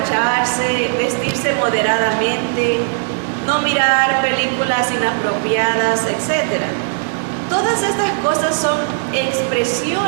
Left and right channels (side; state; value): left; silent; digital silence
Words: vestirse moderadamente, no mirar películas inapropiadas, etc. Todas estas cosas son